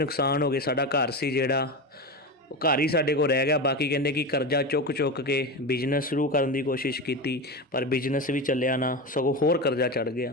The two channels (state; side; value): normal; both; correlation 0.21